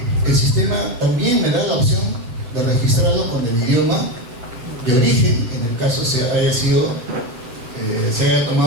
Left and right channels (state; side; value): late; left; 8.2 ms